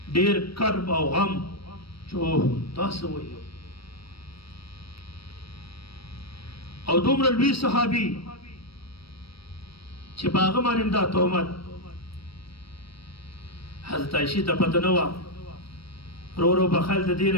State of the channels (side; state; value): right; late; 0.75 ms